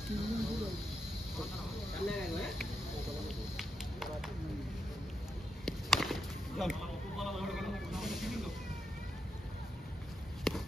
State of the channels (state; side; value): normal; both; correlation 0.84